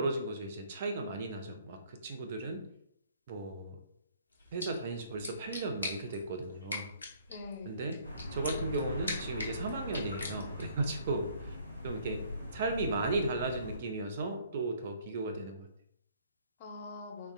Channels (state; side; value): inverted; both; correlation -0.60